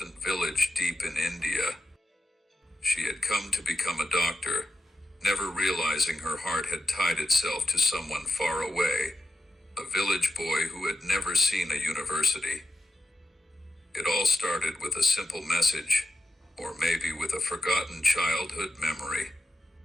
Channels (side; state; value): both; normal; correlation 0.87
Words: village deep in India. She had come to become a doctor, never realizing her heart had tied itself to someone far away, a village boy who had never seen a university. It all started with a simple message, or maybe with a forgotten childhood memory.